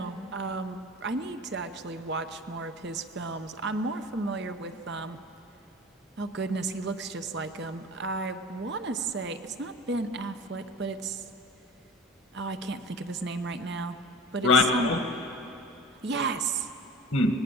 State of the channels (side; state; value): both; normal; correlation 0.39